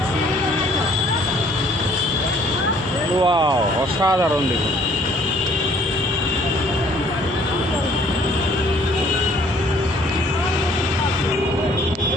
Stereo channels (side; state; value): both; normal; correlation 0.59